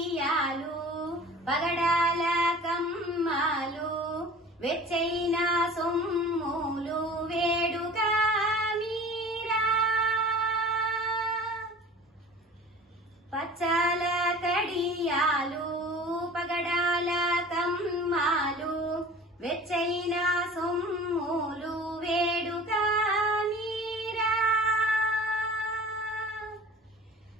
పగడాల కమ్మాలు వెచ్చైన సొమ్ములు వేడుగా మీరా పచ్చాల కడియాలు పగడాల కమ్మాలు వెచ్చైన సొమ్ములు వేడుగా మీరా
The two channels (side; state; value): both; normal; correlation 0.42